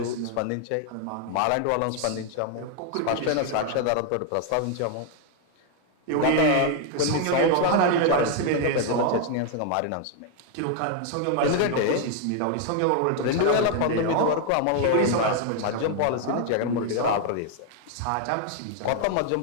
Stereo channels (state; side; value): different; both; correlation 0.00